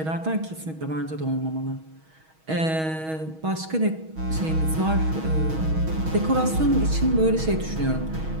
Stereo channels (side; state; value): left; late; 6.3 ms